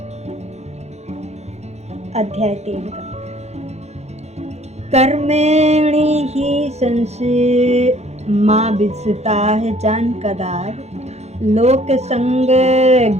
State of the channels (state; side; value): late; left; 0.32 ms